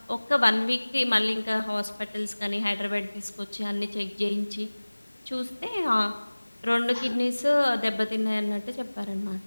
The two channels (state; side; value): inverted; both; correlation -1.00